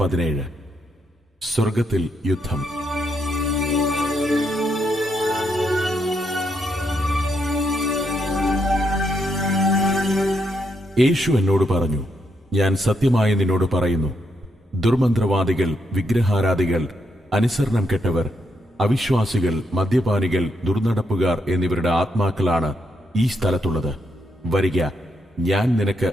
സ്വർഗത്തിൽ യുദ്ധം. യേശു എന്നോട് പറഞ്ഞു, ഞാൻ സത്യമായി നിന്നോട് പറയുന്നു, ദുർമന്ത്രവാദികൾ, വിഗ്രഹാരാധികൾ, അനുസരണം കെട്ടവർ, അവിശ്വാസികൾ, മദ്യപാനികൾ, ദുർനടപ്പുകാർ എന്നിവരുടെ ആത്മാക്കളാണ് ഈ സ്ഥലത്തുള്ളത്. വരിക, ഞാൻ നിനക്ക്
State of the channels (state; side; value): normal; both; correlation 0.78